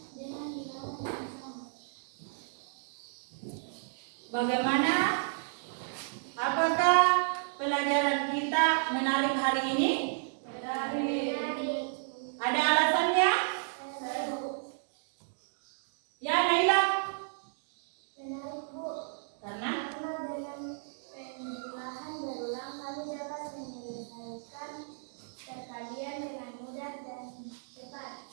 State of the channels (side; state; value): left; silent; digital silence